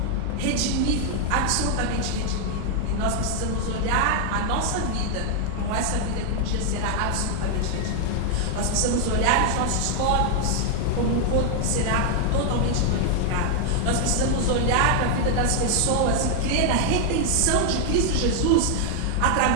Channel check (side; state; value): both; different; correlation 0.00